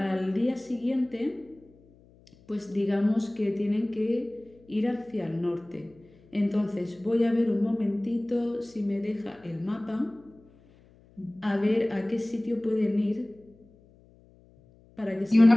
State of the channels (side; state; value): left; noise; hum, 28 dB below the sound